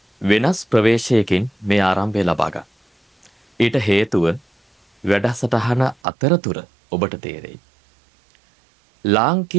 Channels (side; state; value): left; drops out; at 6.0 s